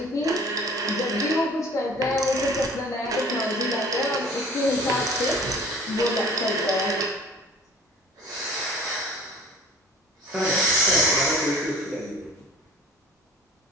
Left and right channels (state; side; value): normal; both; correlation 0.47